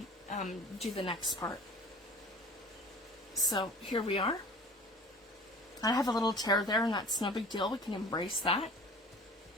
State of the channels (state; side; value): normal; both; correlation 0.43